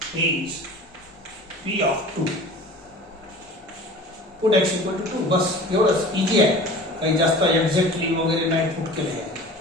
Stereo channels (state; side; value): normal; both; correlation 0.41